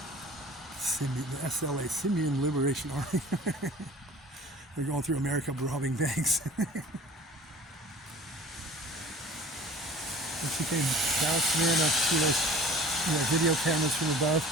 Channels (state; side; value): normal; both; correlation 0.45